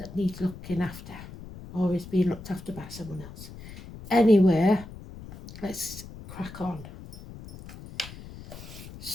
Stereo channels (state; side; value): noise; left; rumble, 15 dB below the sound